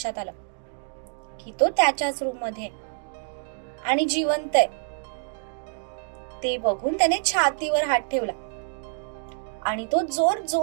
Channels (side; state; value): left; silent; digital silence